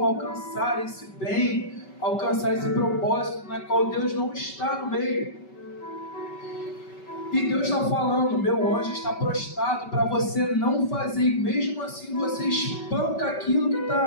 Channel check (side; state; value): right; late; 5.2 ms